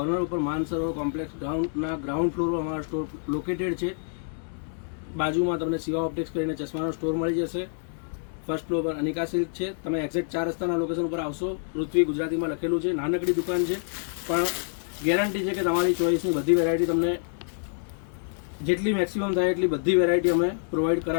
ઉપર માનસરોવર કોમ્પ્લેક્સ ગ્રાઉન્ડ ફ્લોર પર અમારો સ્ટોર લોકેટેડ છે. બાજુમાં તમને શિવા ઓપ્ટિક્સ કરીને ચશ્માનો સ્ટોર મળી જશે. ફર્સ્ટ ફ્લોર પર અનિકા સિલ્ક છે. તમે એક્ઝેક્ટ 4 રસ્તાના લોકેશન ઉપર આવશો. પૃથ્વી ગુજરાતીમાં લખેલું છે. નાનકડી દુકાન છે પણ ગેરંટી છે કે તમારી ચોઈસની બધી વેરાયટી તમને જેટલી મેક્સિમમ થાય એટલી બધી વેરાયટી અમે પ્રોવાઈડ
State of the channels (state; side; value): silent; right; 60 dB below the other